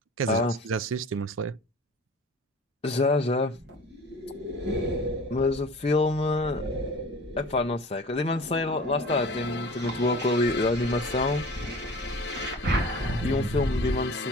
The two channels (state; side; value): normal; both; correlation 0.42